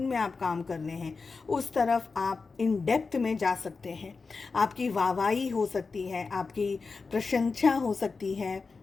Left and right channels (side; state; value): right; quieter; 4.5 dB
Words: में आप काम कर रहे हैं, उस तरफ आप इन डेप्थ में जा सकते हैं। आपकी वाहवाही हो सकती है, आपकी प्रशंसा हो सकती है,